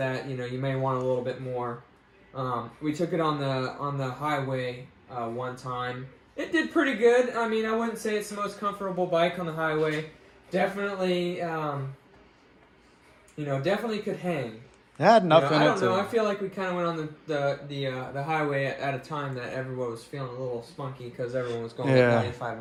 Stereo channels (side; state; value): both; identical; correlation 1.00